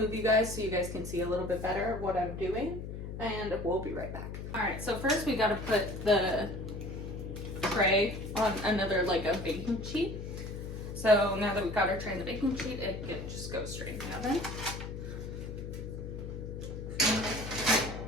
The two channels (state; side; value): noise; left; hum, 7 dB below the sound